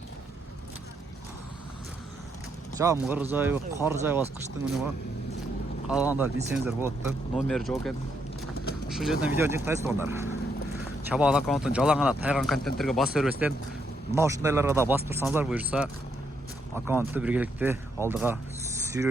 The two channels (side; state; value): both; normal; correlation 0.76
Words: Жамгыр жайы, кар жайбас кыштын күнү го. Калгандар билсеңиздер болот да. Номер жок экен. Ушул жерден видео жыктайсыздар. Чабаал аккаунттун жалаң гана тайган контенттерге басып бербестен, мына ушундайларга да басып турсаңыздар буюрса, аккаунтту биргеликте алдыга